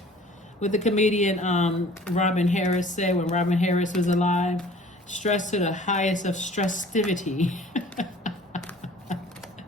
What the comedian Robin Harris said when Robin Harris was alive, stress to the highest of stressivity.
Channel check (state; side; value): normal; both; correlation 0.49